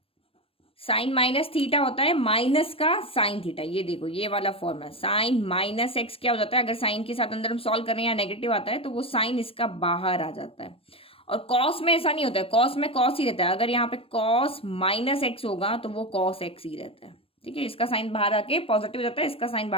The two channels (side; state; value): right; late; 0.27 ms